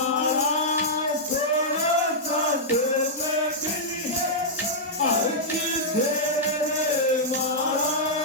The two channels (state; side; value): normal; both; correlation -0.09